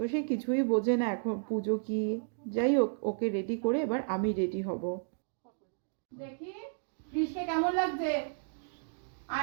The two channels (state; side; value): silent; left; digital silence